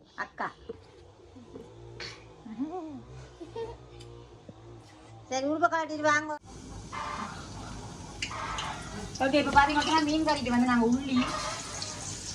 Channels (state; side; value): identical; both; correlation 1.00